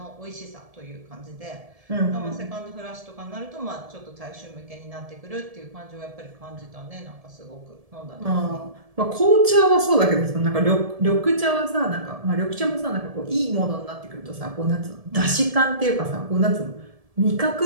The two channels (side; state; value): left; late; 1.7 ms